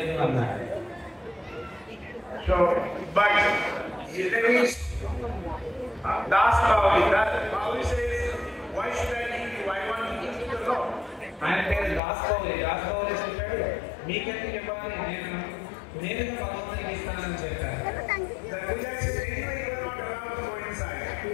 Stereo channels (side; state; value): right; drops out; at 12.0 s